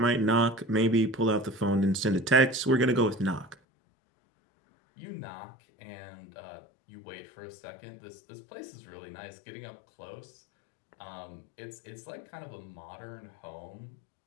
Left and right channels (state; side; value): drops out; right; at 3.6 s